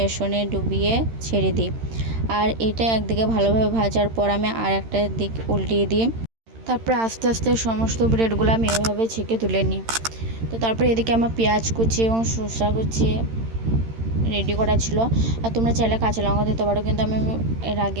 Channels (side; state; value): left; late; 13 ms